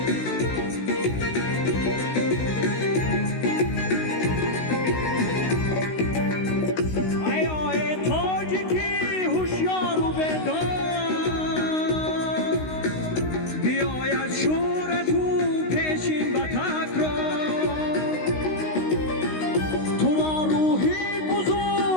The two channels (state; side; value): late; right; 16 ms